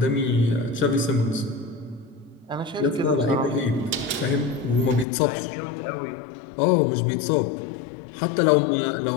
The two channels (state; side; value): drops out; right; at 5.1 s